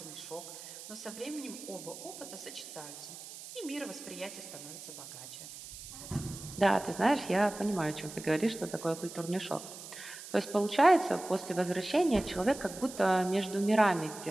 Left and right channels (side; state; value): right; noise; hiss, 13 dB below the sound